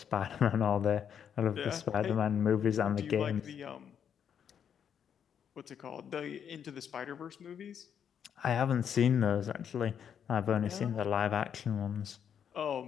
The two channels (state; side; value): quieter; right; 8.3 dB